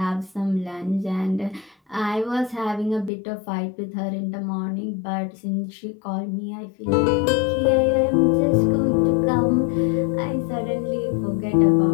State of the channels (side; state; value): right; drops out; at 3.1 s